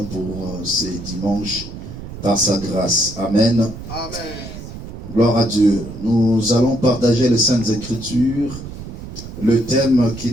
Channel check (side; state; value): right; noise; rumble, 11 dB below the sound